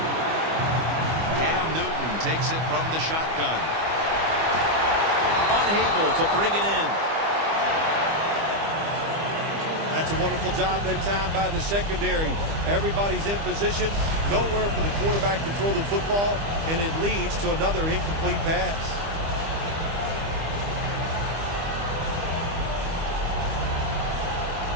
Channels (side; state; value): left; late; 25 ms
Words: Cam Newton takes it from the shotgun. Unable to bring it in. That's a wonderful job that time by the secondary. Everybody's in position. Nowhere for the quarterback to throw the football, and it leads to another incomplete pass.